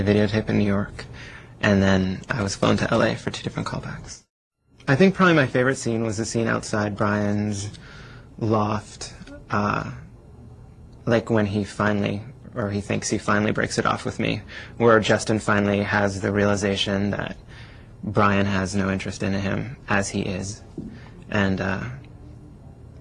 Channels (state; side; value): identical; both; correlation 1.00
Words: videotape in New York. And then I was flown to LA for 2 different callbacks. I think probably my favorite scene was the scene outside Brian's loft, like when he finally, or he thinks he finally breaks it off with me, where Justin finally has the realization that Brian has no interest in him as he is. And